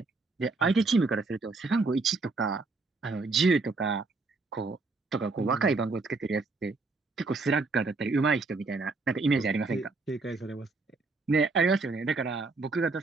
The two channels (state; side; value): quieter; left; 3.7 dB